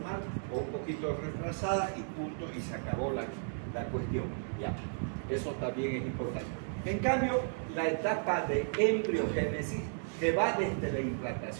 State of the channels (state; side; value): silent; left; digital silence